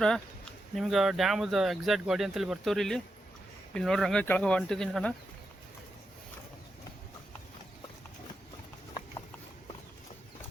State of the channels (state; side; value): normal; both; correlation 0.86